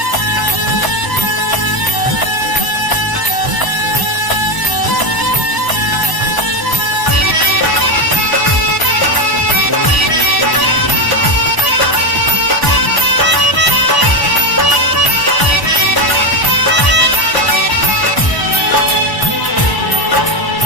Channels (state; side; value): late; right; 1.0 ms